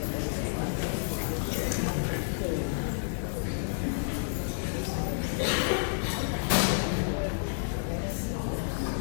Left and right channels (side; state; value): right; silent; digital silence